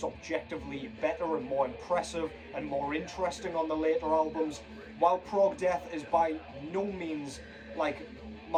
objectively better and more impressive and more interesting on the later albums. While prog death is by no means like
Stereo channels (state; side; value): identical; both; correlation 1.00